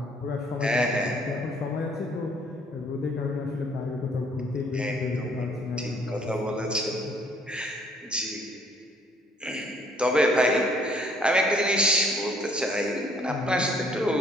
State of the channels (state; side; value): normal; both; correlation 0.62